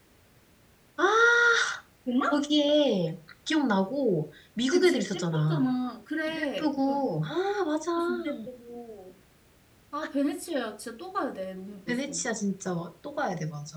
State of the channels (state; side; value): identical; both; correlation 1.00